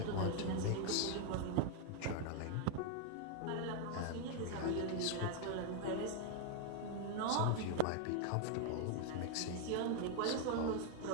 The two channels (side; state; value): both; different; correlation 0.00